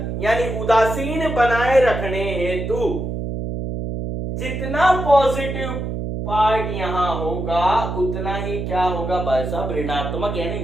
यानी उदासीन बनाए रखने हेतु जितना पॉजिटिव पार्ट यहां होगा, उतना ही क्या होगा भाई साहब, ऋणात्मक यानी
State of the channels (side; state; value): right; noise; hum, 4 dB below the sound